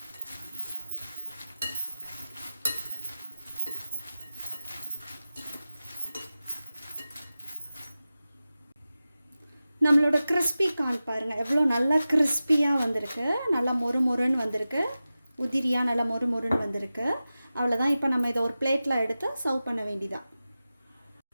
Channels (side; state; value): both; inverted; correlation -0.95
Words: நம்மளோட கிறிஸ்பி கார்ன் பாருங்கள் எவ்வளோ நல்லா கிறிஸ்பியாக வந்திருக்கு. நல்லா மொறு மொறுன்னு வந்திருக்கு. உதிரியாக நல்லா மொறு மொறுன்னு வந்திருக்கு. அவ்வளோதான். இப்போ நம்ம இதை ஒரு பிளேட்டில் எடுத்து சர்வ் பண்ண வேண்டியதான்.